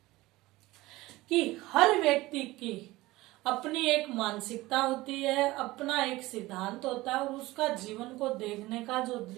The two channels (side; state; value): left; quieter; 19.1 dB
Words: कि हर व्यक्ति की अपनी एक मानसिकता होती है, अपना एक सिद्धांत होता है और उसका जीवन को देखने का जो